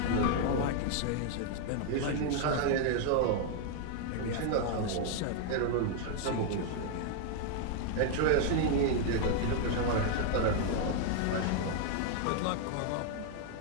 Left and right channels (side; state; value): both; different; correlation 0.00